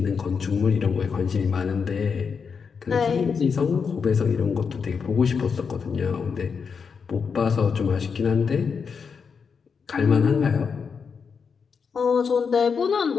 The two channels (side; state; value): right; quieter; 5.9 dB